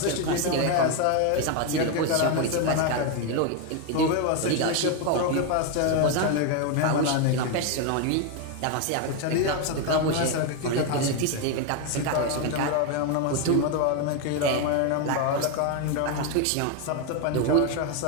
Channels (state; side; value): different; both; correlation 0.01